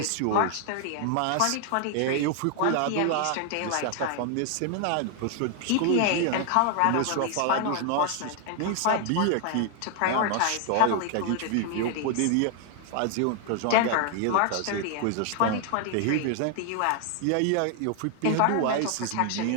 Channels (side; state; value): both; different; correlation 0.00